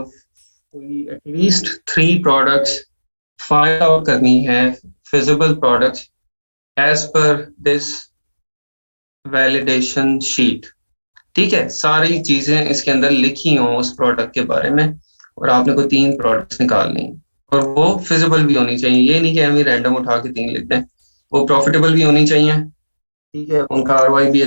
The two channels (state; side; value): inverted; both; correlation -1.00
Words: कोई एटलीस्ट 3 प्रोडक्ट्स फाइंड आउट करनी है, feasible products, as per this validation sheet. ठीक है, सारी चीजें इसके अंदर लिखी हों उस प्रोडक्ट के बारे में, और आपने कोई 3 प्रोडक्ट्स निकालनी है, और वो फिजिबल भी होनी चाहिए। ये नहीं कि हम ही रैंडम उठा के 3 लिख दें। वो प्रॉफिटेबल भी होनी चाहिए। ठीक है, उनका आरओआई भी